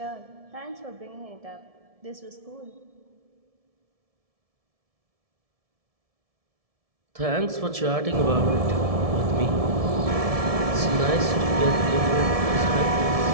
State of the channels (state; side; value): late; left; 1.7 ms